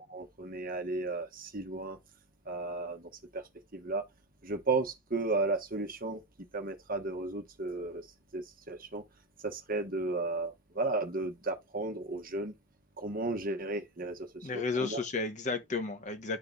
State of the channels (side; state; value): both; normal; correlation 0.18